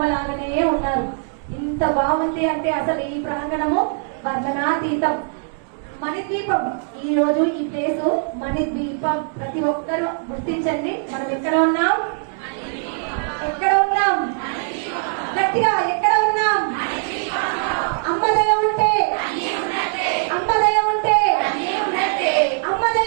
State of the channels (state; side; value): silent; left; 65 dB below the other